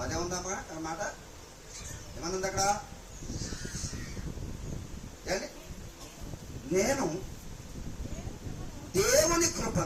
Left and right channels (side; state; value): both; identical; correlation 1.00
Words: అదే ఉందమ్మా అన్నమాట. ఏమనుంది అక్కడ? నేను దేవుని